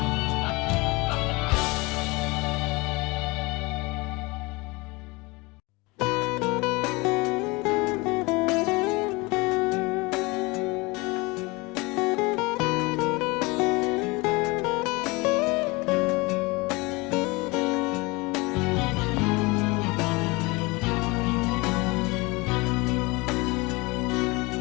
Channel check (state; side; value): quieter; right; 25.0 dB